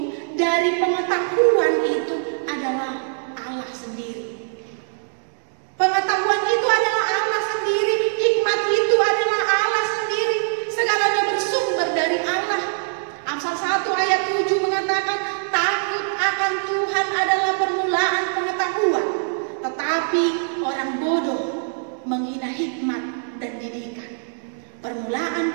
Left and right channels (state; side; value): silent; left; 63 dB below the other